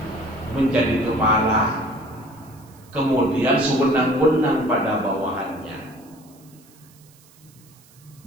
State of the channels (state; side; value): noise; right; hiss, 27 dB below the sound